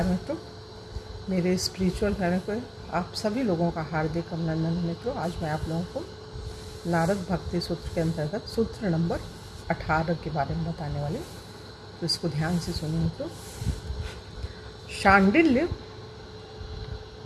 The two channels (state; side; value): identical; both; correlation 1.00